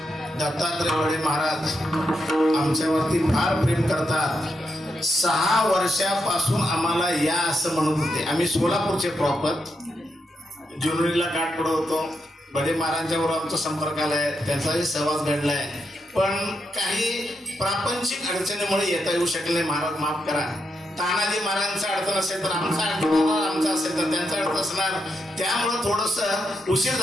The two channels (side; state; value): both; normal; correlation 0.83